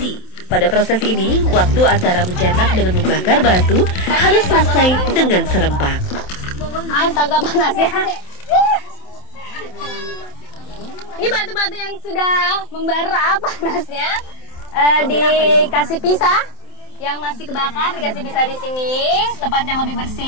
pada proses ini, waktu antara mencetak dengan membakar batu harus selesai dengan serempak. Astaga panas ya. Ini batu-batu yang sudah membara panasnya dikasih pisah, yang masih kebakar dikasih pisah di sini, tempat yang lebih bersih.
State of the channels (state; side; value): late; right; 27 ms